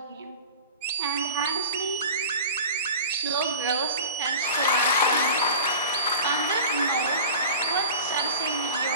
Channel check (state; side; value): inverted; both; correlation -0.35